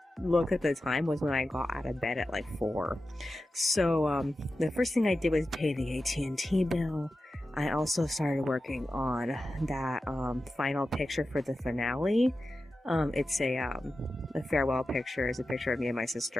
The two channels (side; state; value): both; normal; correlation 0.92